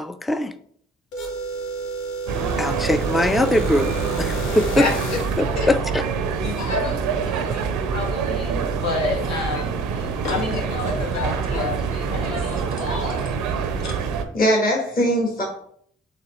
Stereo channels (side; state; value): both; normal; correlation 0.52